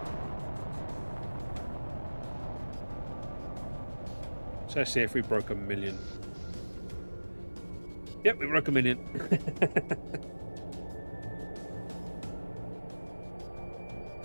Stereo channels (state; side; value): inverted; both; correlation -1.00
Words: So let's see if we broke 1 million. Yep, we broke 1 million.